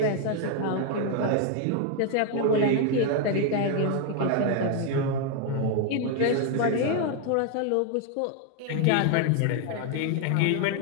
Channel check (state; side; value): different; both; correlation 0.01